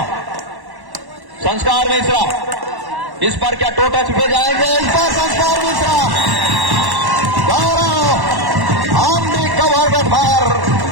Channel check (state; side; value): late; left; 1.1 ms